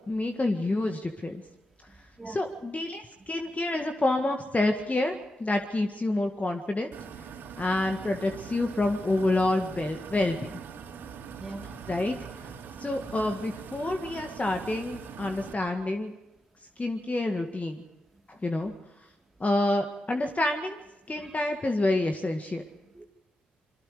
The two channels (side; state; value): both; normal; correlation 0.89